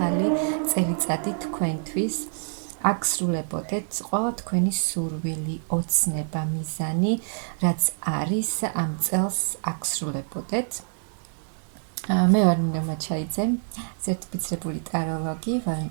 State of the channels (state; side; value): silent; left; 61 dB below the other